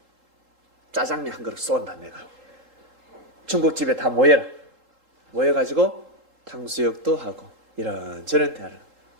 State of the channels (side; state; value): left; late; 3.8 ms